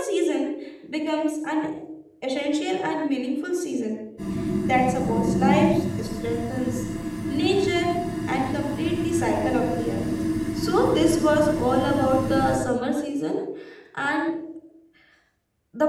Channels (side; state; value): both; identical; correlation 1.00